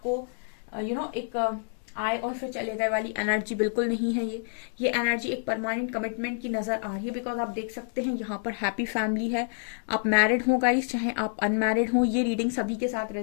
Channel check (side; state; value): right; silent; digital silence